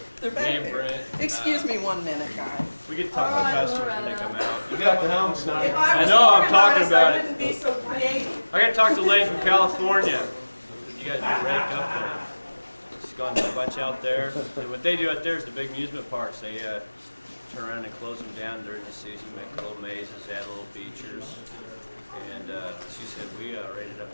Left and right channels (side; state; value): both; inverted; correlation -1.00